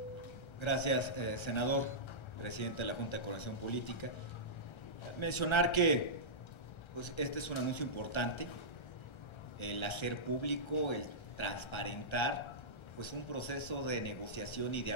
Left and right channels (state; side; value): late; right; 1.3 ms